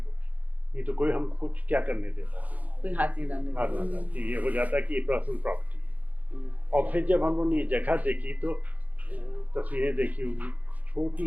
नहीं तो कोई हम कुछ क्या करने देता, कोई हाथ नहीं डालने कि ये हो जाता कि ये पर्सनल प्रॉपर्टी है। और फिर जब हम लोगों ने ये जगह देखी तो तस्वीरें देखी होगी,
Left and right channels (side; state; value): left; late; 0.077 ms